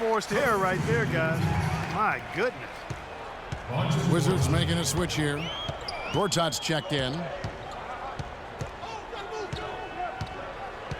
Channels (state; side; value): identical; both; correlation 1.00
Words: error right there, guys. My goodness. Wizards making a switch here. Gortat's checked in.